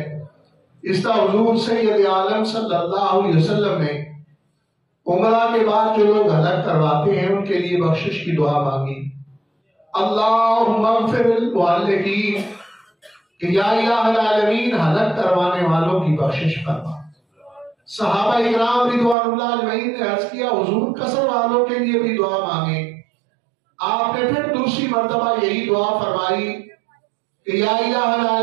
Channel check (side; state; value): left; drops out; at 19.2 s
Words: اس طرح حضور سید عالم صلی اللہ علیہ وسلم نے عمرہ کے بعد جو لوگ ہلاک کرواتے ہیں ان کے لیے بخشش کی دعا مانگی، اللہم اغفر للمعلقین، کہ یا الہ العالمین ہلاک کروانے والوں کی بخشش فرما۔ صحابہ اکرام رضوان اللہ اجمعین نے عرض کیا حضور قصر والوں کے لیے بھی دعا مانگے، آپ نے پھر دوسری مرتبہ یہی دعا فرمائی کہ یا الہ